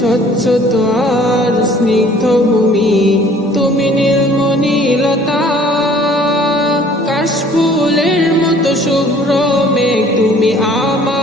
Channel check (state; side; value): normal; both; correlation 0.54